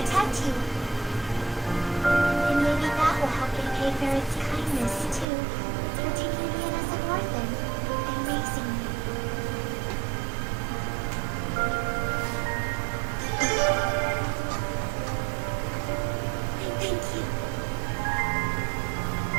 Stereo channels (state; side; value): drops out; left; at 5.2 s